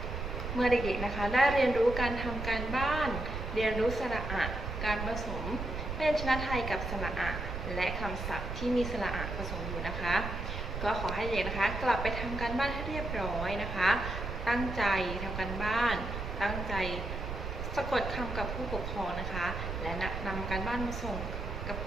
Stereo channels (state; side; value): noise; right; rumble, 5 dB below the sound